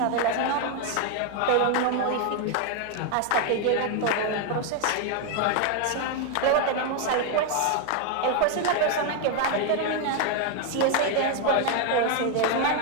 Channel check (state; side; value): different; both; correlation 0.01